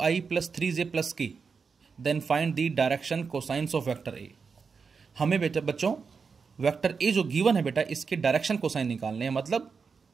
plus 3j plus k, then find the direction cosines of vector A. हमें बेटा बच्चों वेक्टर ए जो गिवन है बेटा इसके डायरेक्शन कोसाइन निकालने हैं, मतलब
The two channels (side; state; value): left; quieter; 5.4 dB